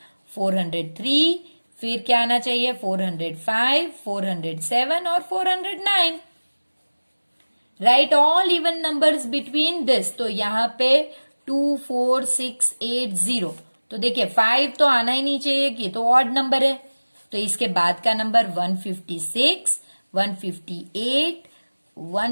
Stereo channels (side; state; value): both; inverted; correlation -1.00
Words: 403, फिर क्या आना चाहिए 405, 407 और 409। Right all even numbers between this. तो यहाँ पे 2, 4, 6, 8, 0। तो देखिए 5 तो आना ही नहीं चाहिए कि तो ऑड नंबर है। तो इसके बाद का नंबर 156, 158,